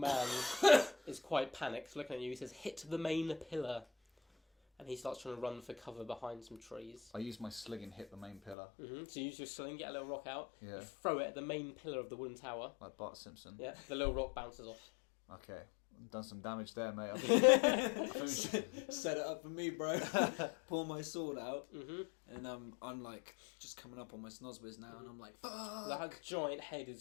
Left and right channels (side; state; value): right; drops out; at 8.6 s